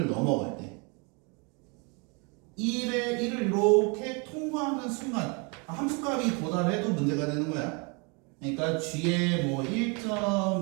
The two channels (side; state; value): left; quieter; 32.5 dB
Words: 넘어갈 때 1을 이렇게 통과하는 순간 함수값이 도달해도 문제가 되는 거야. 그러니까 g에 뭐